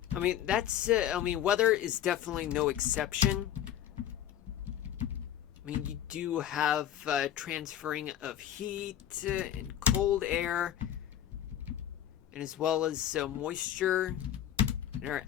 I mean, weather is definitely no exception. I mean, you do have transferring of heat and cold air, and as well as moisture in our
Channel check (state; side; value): quieter; right; 11.1 dB